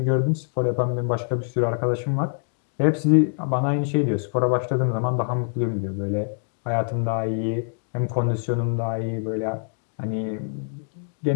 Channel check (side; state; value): right; silent; digital silence